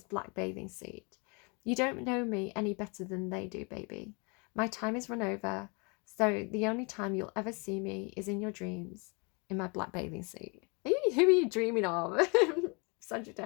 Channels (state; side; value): quieter; right; 32.2 dB